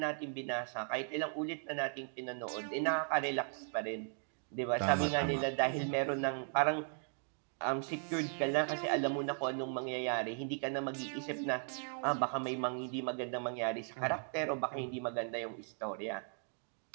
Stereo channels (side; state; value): left; silent; 53 dB below the other